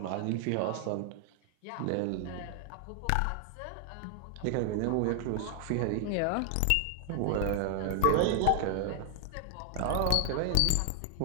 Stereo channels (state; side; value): different; both; correlation 0.00